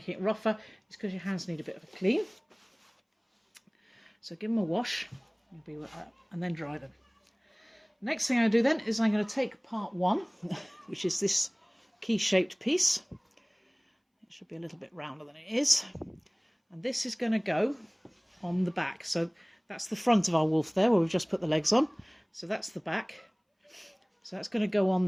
it rougher, it's because your hands need a bit of a clean. So give them a wash, and then dry them. Next thing I do then is I'm going to take part one, which is this key-shaped piece. It should be a little bit rounder than it is. And this is going to go on the back. So that's the front of our wolf there, where we've just put the legs on. So that's the back. So that's going to go on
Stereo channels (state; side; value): identical; both; correlation 1.00